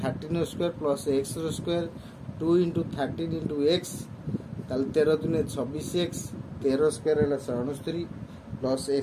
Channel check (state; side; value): identical; both; correlation 1.00